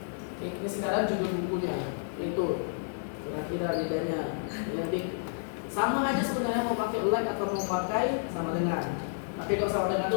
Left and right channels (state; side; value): silent; right; digital silence